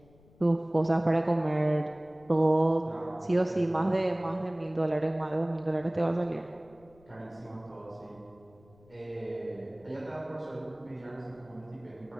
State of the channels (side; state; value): left; noise; rumble, 27 dB below the sound